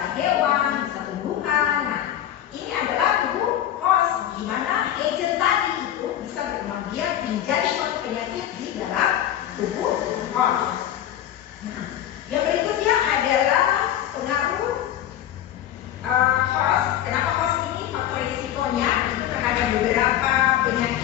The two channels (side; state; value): right; quieter; 11.5 dB